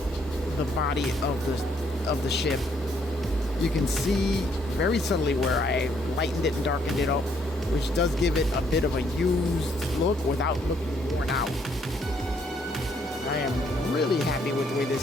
the body of the ship. You can see very subtly where I lightened it and darkened it up, which does give it a bit of a used look without looking worn out. I am really happy with the way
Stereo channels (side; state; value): both; normal; correlation 0.69